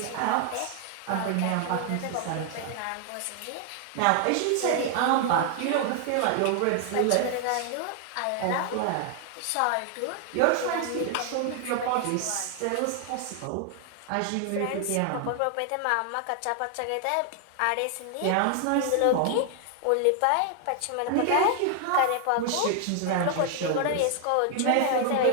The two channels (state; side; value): different; both; correlation 0.00